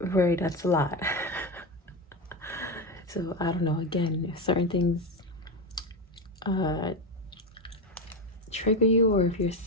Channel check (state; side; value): normal; both; correlation 0.15